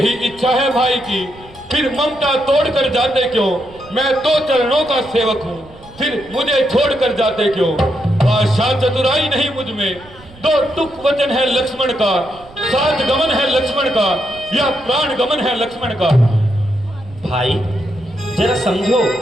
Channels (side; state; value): right; noise; rumble, 23 dB below the sound